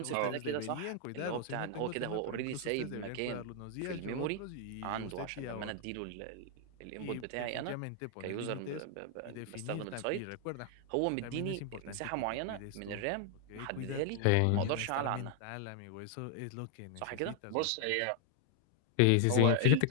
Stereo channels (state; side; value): different; both; correlation 0.00